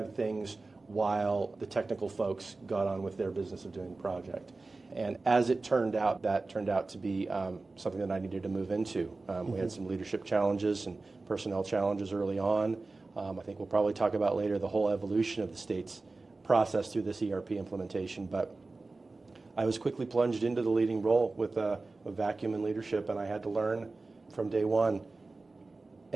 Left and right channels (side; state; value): left; quieter; 3.5 dB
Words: things while the technical folks got on with their business of doing the project. And as it turned out, that turned out to be something that I needed to move into. We had some leadership challenges and personnel challenges early on. I think we'll probably talk about later the whole evolution of the state's process through this ERP implementation. But I was quickly plunged into the leading role with a vacuum in leadership, and I had to learn from day one